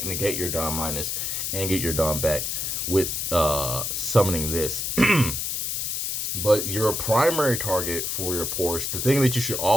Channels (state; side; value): noise; left; hiss, 1 dB below the sound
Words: your down minus and get your down back with summoning this. But your primary target for your Porsche, the thing that you should